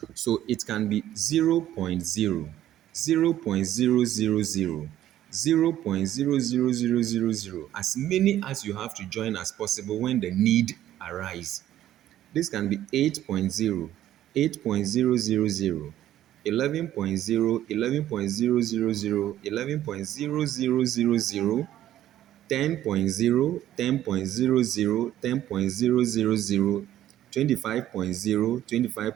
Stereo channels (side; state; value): left; quieter; 12.6 dB